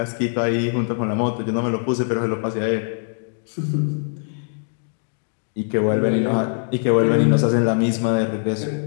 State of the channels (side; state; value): right; silent; digital silence